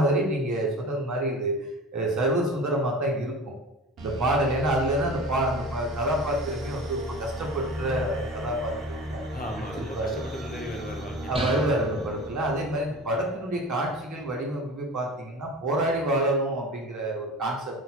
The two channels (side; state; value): both; normal; correlation 0.35